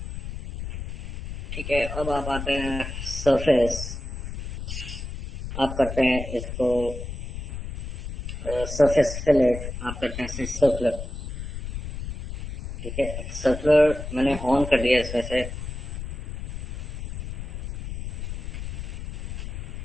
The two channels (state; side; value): noise; left; rumble, 7 dB below the sound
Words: ठीक है, अब आप आते हैं सरफेस, आप करते हैं इसको सरफेस फिलेट, आप करते हैं सर्कुलर। ठीक है, सर्कुलर मैंने ऑन कर दिया इसमें से।